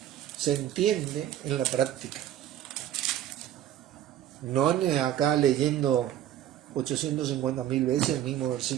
se entiende en la práctica. No acá leyendo 850.000 veces el mismo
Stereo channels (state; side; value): quieter; left; 11.8 dB